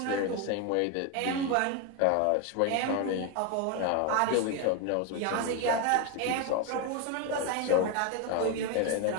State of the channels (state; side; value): different; both; correlation 0.02